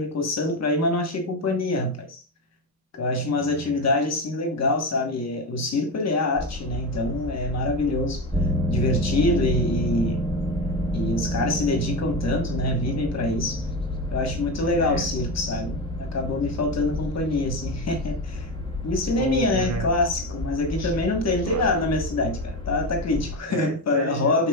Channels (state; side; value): normal; both; correlation 0.18